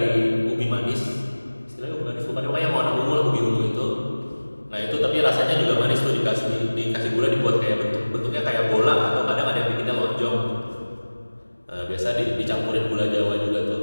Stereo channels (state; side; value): inverted; both; correlation -1.00